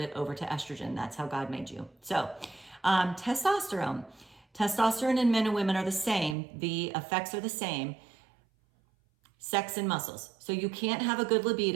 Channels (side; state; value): left; drops out; at 6.4 s